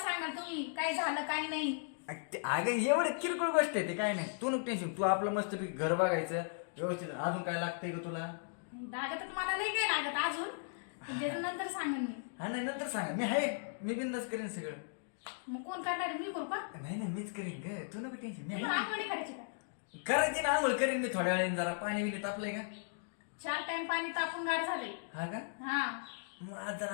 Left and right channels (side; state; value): right; silent; digital silence